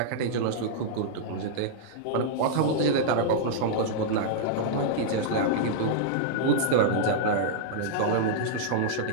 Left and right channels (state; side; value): different; both; correlation -0.02